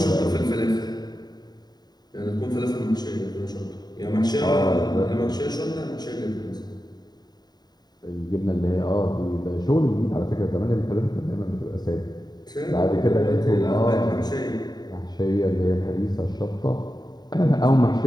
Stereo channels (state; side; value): late; right; 0.20 ms